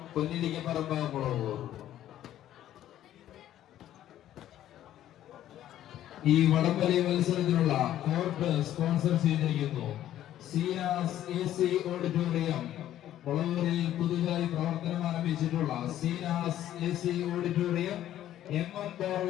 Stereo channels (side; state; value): right; quieter; 12.3 dB